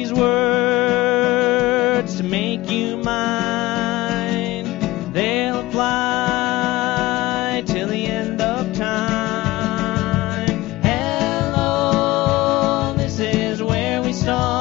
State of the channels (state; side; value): quieter; right; 18.8 dB